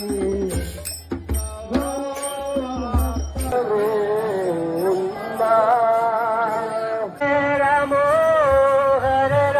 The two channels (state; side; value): identical; both; correlation 1.00